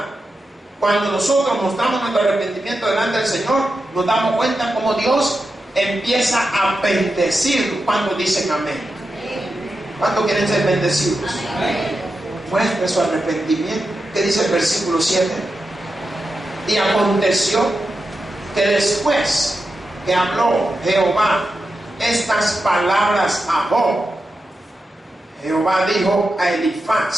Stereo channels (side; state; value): both; normal; correlation 0.89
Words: cuando nosotros mostramos nuestro arrepentimiento delante del Señor, nos damos cuenta cómo Dios empieza a bendecir cuando dicen amén. ¿Cuántos quieren ser bendecidos? Muestre su arrepentimiento. ¿Qué dice el versículo 7? Y aconteció que después que habló Jehová estas palabras a Job, Jehová dijo a